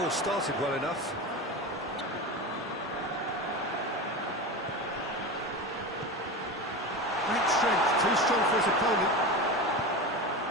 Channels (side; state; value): both; normal; correlation 0.25